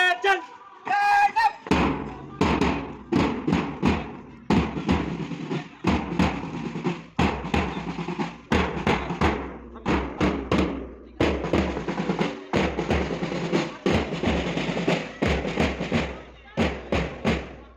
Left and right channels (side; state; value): both; identical; correlation 1.00